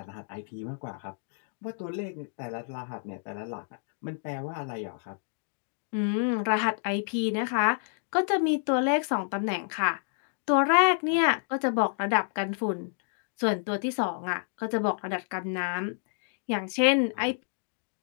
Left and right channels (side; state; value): right; silent; digital silence